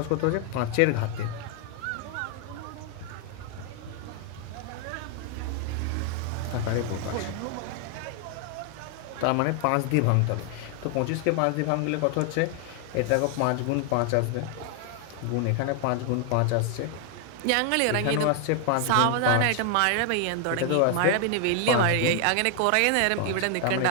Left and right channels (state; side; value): different; both; correlation 0.00